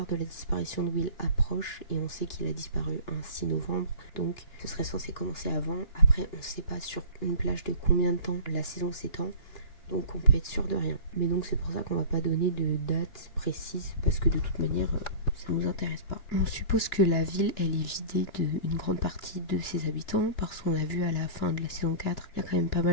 de la disparition de Will approche et on sait qu'il a disparu un 6 novembre, donc ce serait censé commencer avant. Après, on ne sait pas sur une plage de combien de temps la saison s'étend, donc on peut être sûr de rien. Mais donc c'est pour ça qu'on va pas donner de date précise, parce que de toute manière, ça nous intéresse pas. On suppose que la ville, elle est vidée d'une grande partie de ses habitants, parce qu'on a vu à la fin de la saison 4, il y a quand même pas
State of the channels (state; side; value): late; right; 2.9 ms